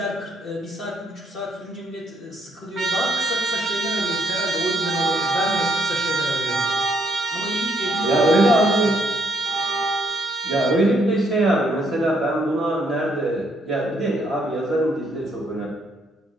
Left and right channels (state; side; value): normal; both; correlation 0.72